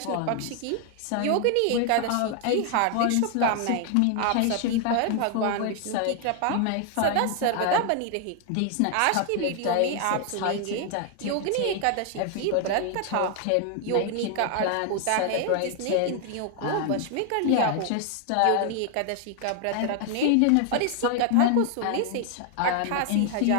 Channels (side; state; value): both; different; correlation 0.00